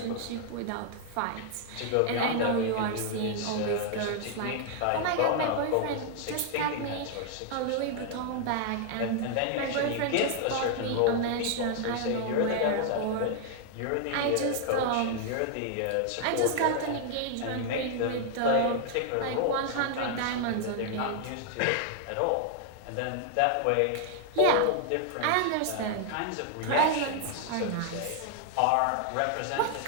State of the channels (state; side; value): different; both; correlation 0.00